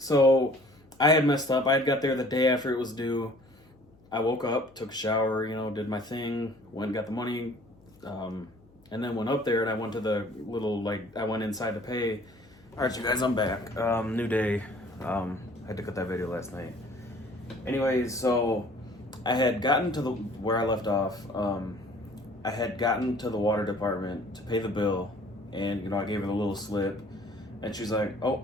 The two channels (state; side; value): noise; left; hum, 30 dB below the sound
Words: I had messed up. I had got there the day after it was due. I woke up, took a shower, did my thing, went and got the money, and then went up there, and I went to the little, I went inside to pay. All right, you guys, I'm back. New day. I had to cut that video last night. Anyways, so I had gotten to where I left off. I had gotten to the water department to pay the bill, and, I gave her the little slip, and she's like, oh,